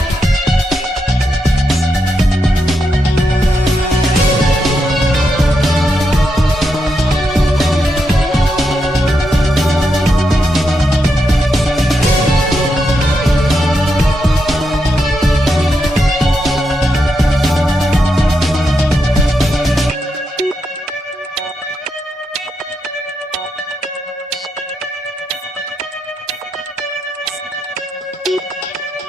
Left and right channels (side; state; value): both; normal; correlation 0.83